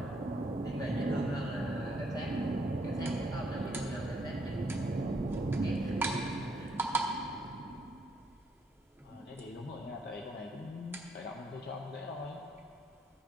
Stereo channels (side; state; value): both; normal; correlation 0.72